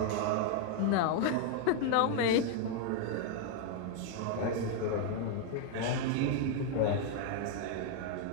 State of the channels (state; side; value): different; both; correlation 0.01